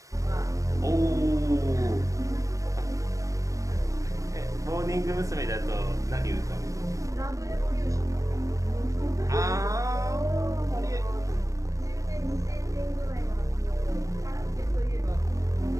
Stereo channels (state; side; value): late; left; 0.16 ms